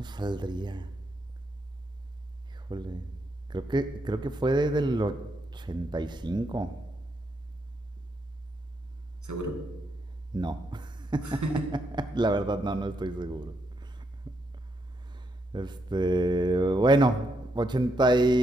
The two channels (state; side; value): normal; both; correlation 0.79